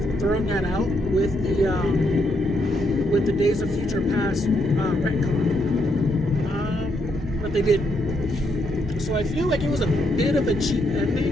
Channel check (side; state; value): both; normal; correlation 0.76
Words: thrown that out with the Days of Future Past retcon. But they didn't. So I feel like it was a bit of a cheap